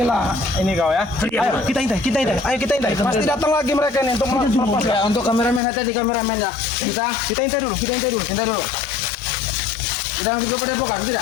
ini kau ya. Ayo, kita intai. Ayo kita intai. Pasti datang lagi mereka ini untuk melepas. Ya, untuk kameramen tadi kameramen ya. Kita intai dulu. Intai dulu. Kita langsung ke Padepokan, tidak?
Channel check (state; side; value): drops out; right; at 5.6 s